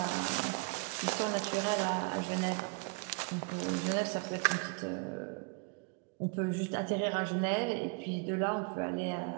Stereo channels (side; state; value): left; quieter; 30.4 dB